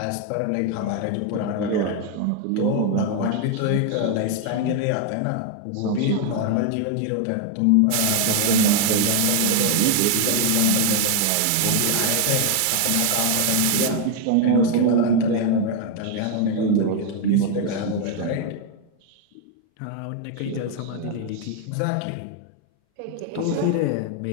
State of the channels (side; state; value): both; different; correlation 0.01